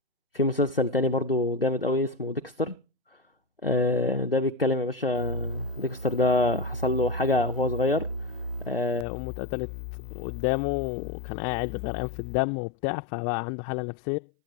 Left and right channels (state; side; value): drops out; right; at 9.1 s